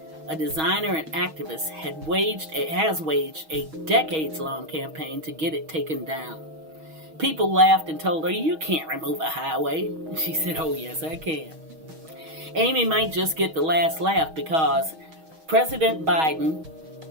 a designer and activist, has waged a decades-long campaign to get it taken down. People laughed and told her, "You can't remove a highway." She said, "Oh yes, I can." Amy might just get the last laugh because President Biden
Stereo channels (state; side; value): late; left; 6.3 ms